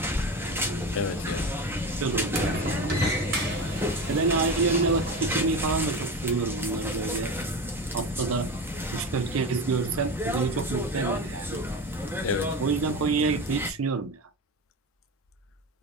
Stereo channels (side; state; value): both; normal; correlation 0.25